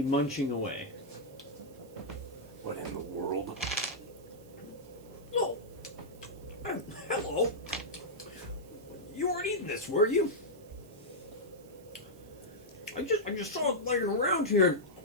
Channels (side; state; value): right; noise; hiss, 26 dB below the sound